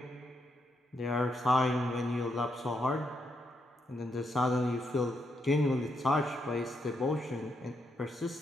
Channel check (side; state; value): both; normal; correlation 0.80